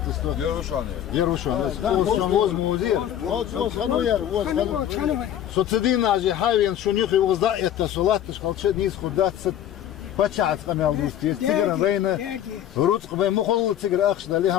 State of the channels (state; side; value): quieter; right; 10.8 dB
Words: Верушан. Воз музей. Вот хадуяр, воз хаду. Социдина же хавен, шунюх его за это сулатыш, халчет низ худаться. Почат قميل دوستي تيجر بين روت قبل مخل تيجر أخش ده